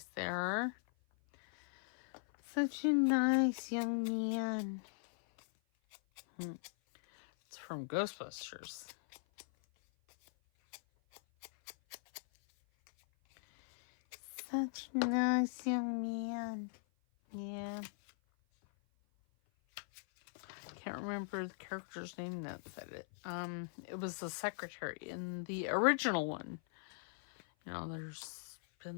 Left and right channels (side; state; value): right; silent; 51 dB below the other